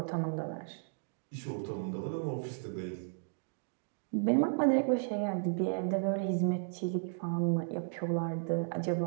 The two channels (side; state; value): left; silent; digital silence